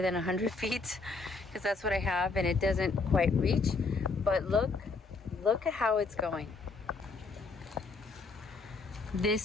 than 100 feet because that's what I have and it doesn't quite reach. But look at how it's going.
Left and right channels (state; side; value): quieter; right; 3.9 dB